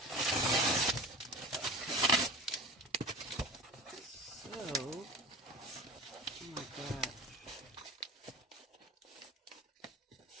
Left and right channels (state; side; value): normal; both; correlation 0.34